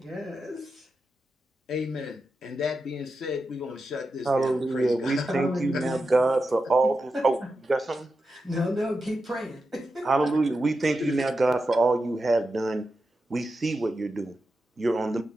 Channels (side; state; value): both; normal; correlation 0.89